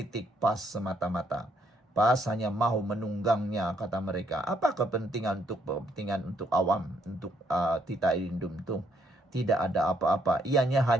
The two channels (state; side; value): normal; both; correlation 0.71